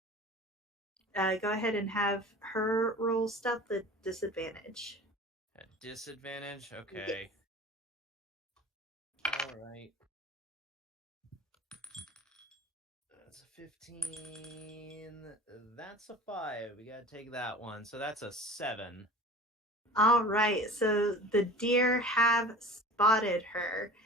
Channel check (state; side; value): normal; both; correlation 0.40